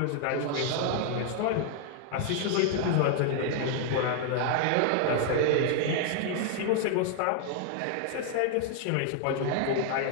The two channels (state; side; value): different; both; correlation 0.00